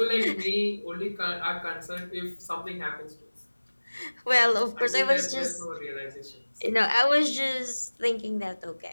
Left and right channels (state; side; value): inverted; both; correlation -1.00